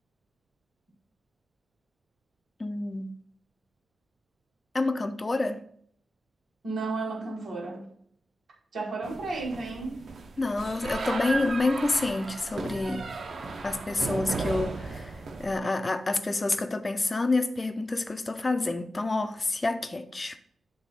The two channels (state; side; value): normal; both; correlation 0.93